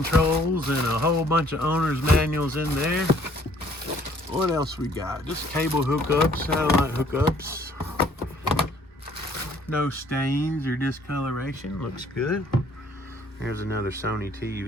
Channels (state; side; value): normal; both; correlation 0.60